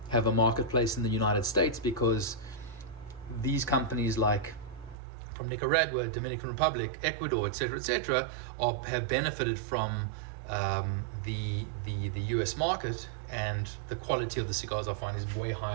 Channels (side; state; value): left; drops out; at 5.0 s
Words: have a marketplace in the United States, because these companies like from Nicaragua, Dominican Republic, Ecuador, etc., have benefited from the US market, and the quality of the cigars I find is way